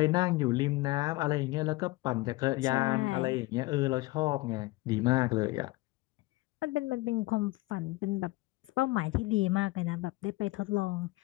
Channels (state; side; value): quieter; right; 20.8 dB